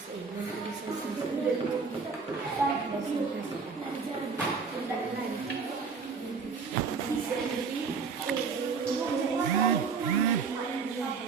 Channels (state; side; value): quieter; left; 5.3 dB